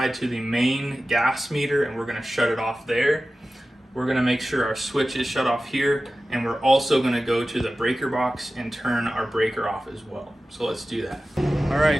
to the main gas meter and we're going to shut it off there. We're going to make sure our switch is shut off here, and we're also going to go to the breaker box and turn our breaker off as well. So let's do that. All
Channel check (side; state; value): both; normal; correlation 0.95